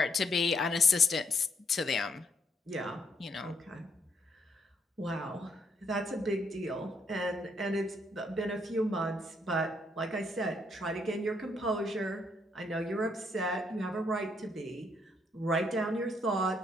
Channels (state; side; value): normal; both; correlation 0.72